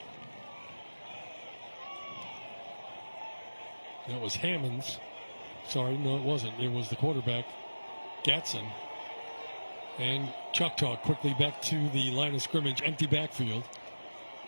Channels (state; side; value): inverted; both; correlation -1.00